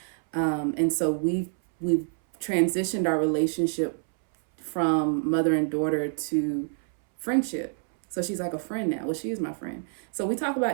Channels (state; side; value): silent; left; 60 dB below the other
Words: and so we've transitioned our relationship from mother and daughter to friendship. So she's like a friend now. Well, she is my friend. So we talk